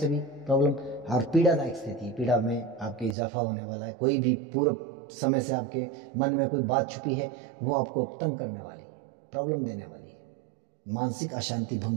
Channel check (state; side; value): drops out; left; at 3.2 s